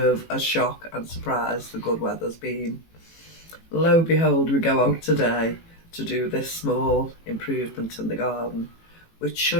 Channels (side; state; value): right; late; 18 ms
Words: a shock and surprise the good weather's been. Lo and behold, we go out today to do this small improvement in the garden, which